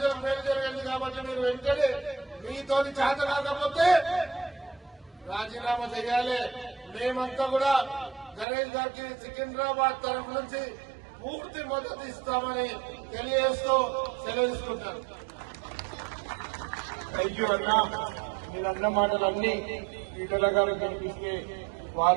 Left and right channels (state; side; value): drops out; left; at 8.5 s